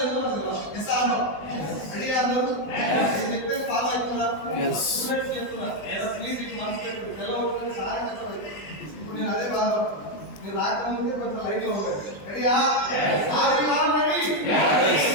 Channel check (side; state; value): right; late; 20 ms